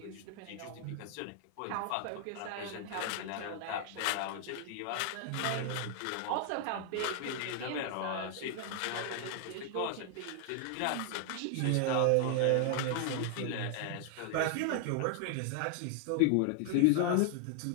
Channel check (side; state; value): both; different; correlation 0.00